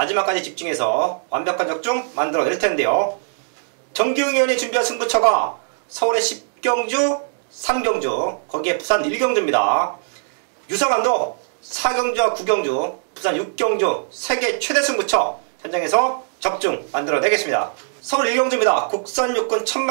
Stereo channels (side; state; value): left; silent; digital silence